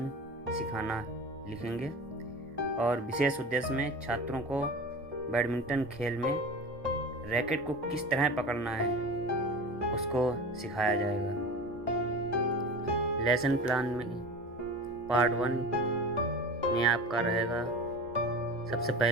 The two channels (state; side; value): normal; both; correlation 0.33